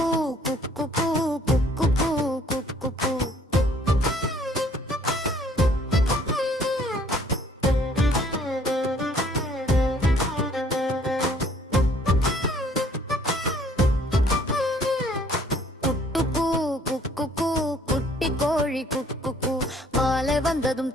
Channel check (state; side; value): normal; both; correlation 0.59